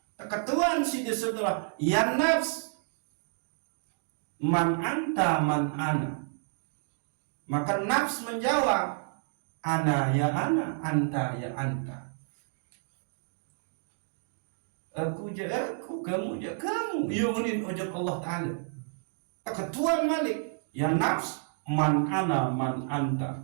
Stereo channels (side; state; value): left; silent; digital silence